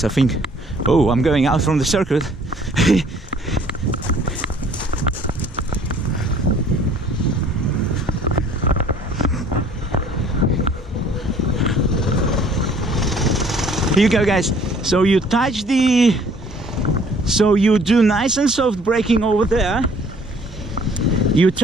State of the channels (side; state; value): both; normal; correlation 0.57